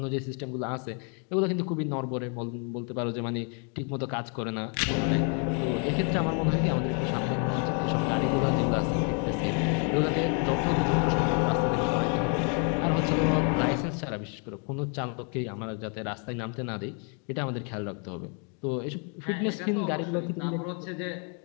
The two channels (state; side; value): quieter; right; 39.6 dB